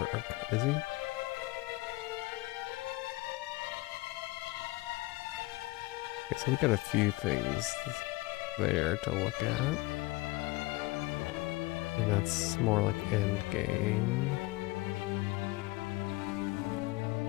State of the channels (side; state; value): right; quieter; 21.6 dB